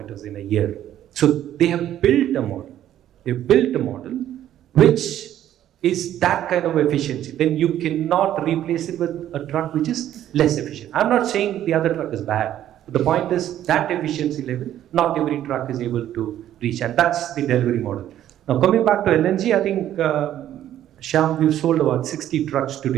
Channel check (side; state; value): left; quieter; 11.8 dB